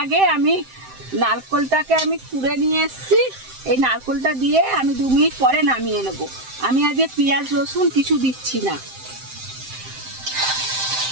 আগে আমি নারকেলটাকে আমি কুড়ে নিয়ে এসেছি। এই নারকেলটা দিয়ে আমি 2 মিনিট পরে নামিয়ে নেব। আমি আজকে পেঁয়াজ রসুন কিছু দিচ্ছি না।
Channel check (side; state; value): left; late; 7.7 ms